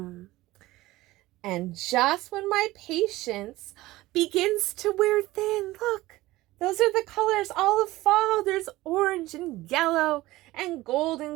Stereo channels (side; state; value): left; quieter; 18.1 dB